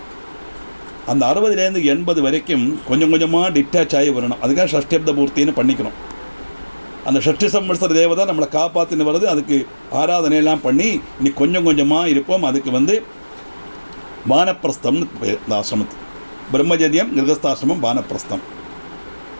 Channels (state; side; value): inverted; both; correlation -1.00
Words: அந்த 60லேருந்து 80 வரைக்கும் கொஞ்சம் கொஞ்சமாக டிட்டாச் ஆகி வரணும். அதுக்காக ஷஷ்டிப்த பூர்த்தின்னு பண்ணிக்கணும். அந்த ஷஷ்டி சம்வத்சர தேவதை நம்மளை காப்பாற்றின்னு வருது. அதுக்கு ஆராதனையெல்லாம் பண்ணி இனி கொஞ்சம் கொஞ்சமாக இருப்போம். அதுக்கு வானப்பிரஸ்தம்னு இந்த ஆசிரமத்துக்கு பிரம்மச்சரியம், கிரகஸ்தாசிரமம், வானப்பிரஸ்தம்.